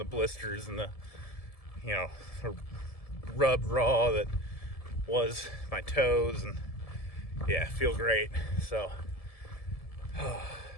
blisters and the rubbed raw that was my toes. And yeah, feel great. So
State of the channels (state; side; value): late; right; 1.7 ms